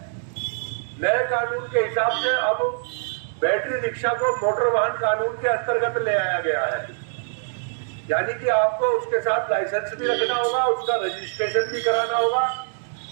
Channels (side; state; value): left; silent; digital silence